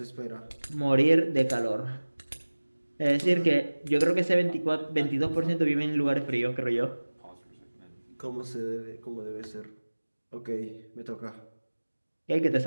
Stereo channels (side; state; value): both; inverted; correlation -1.00